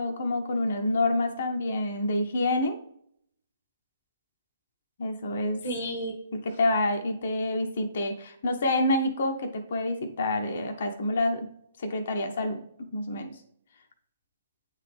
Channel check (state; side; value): inverted; both; correlation -0.71